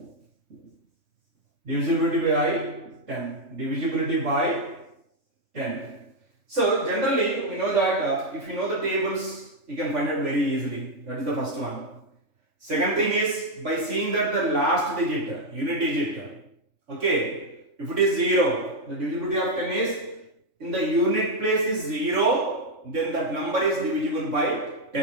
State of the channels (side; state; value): left; late; 3.5 ms